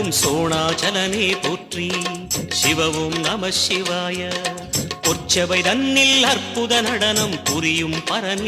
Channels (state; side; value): identical; both; correlation 1.00